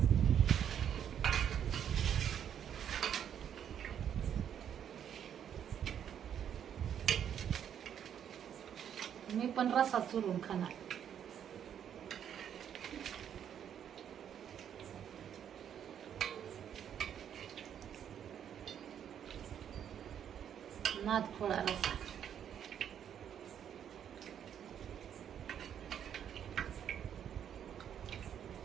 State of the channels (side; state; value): left; quieter; 9.1 dB